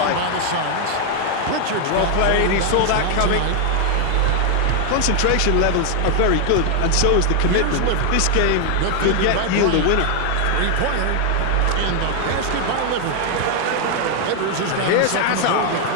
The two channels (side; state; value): both; different; correlation 0.00